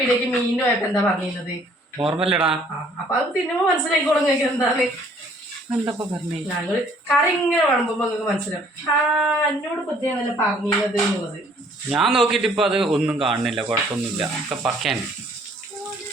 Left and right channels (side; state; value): both; normal; correlation 0.60